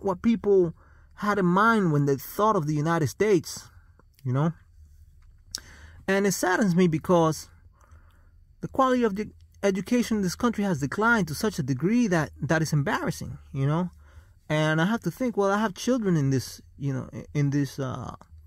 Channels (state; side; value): identical; both; correlation 1.00